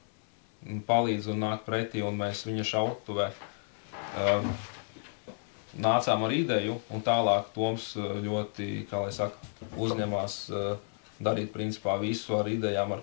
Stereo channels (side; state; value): right; silent; 57 dB below the other